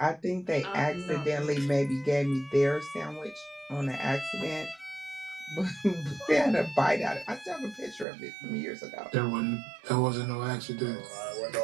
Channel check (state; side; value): drops out; left; at 8.1 s